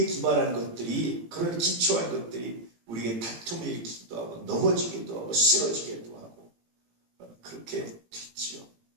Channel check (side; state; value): left; late; 18 ms